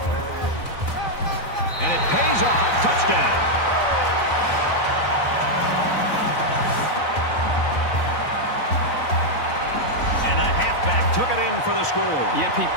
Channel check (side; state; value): right; late; 4.0 ms